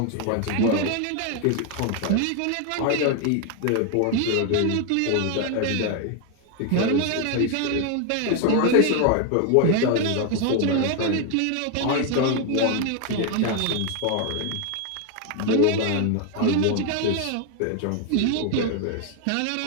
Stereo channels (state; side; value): different; both; correlation 0.01